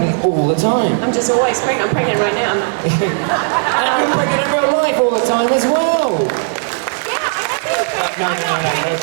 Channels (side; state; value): left; silent; digital silence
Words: all the time. I'm just always pregnant. I'm pregnant right now. And you're pregnant in real life all the time as well. No.